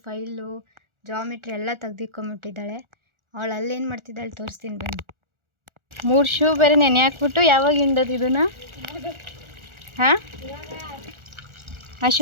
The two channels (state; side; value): late; left; 1.4 ms